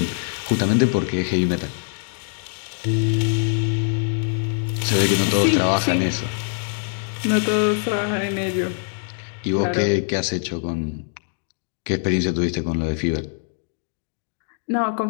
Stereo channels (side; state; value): right; silent; digital silence